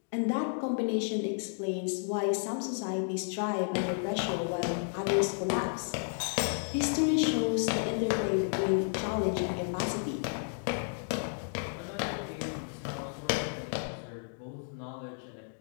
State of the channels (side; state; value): right; silent; digital silence